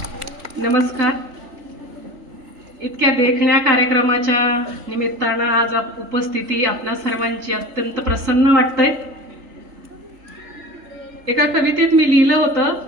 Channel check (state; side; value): late; left; 3.4 ms